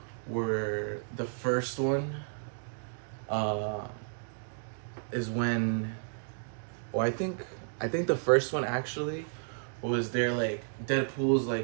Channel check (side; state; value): left; silent; digital silence